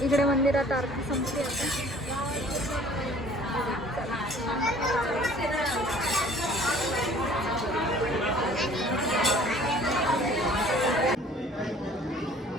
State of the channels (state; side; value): normal; both; correlation 0.52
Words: इकडे मंदिरात आरती संपली आता.